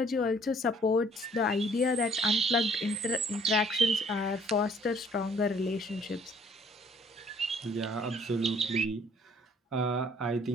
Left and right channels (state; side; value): normal; both; correlation 0.60